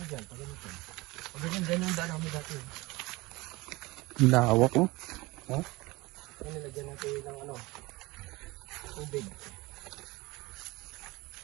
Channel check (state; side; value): quieter; left; 22.2 dB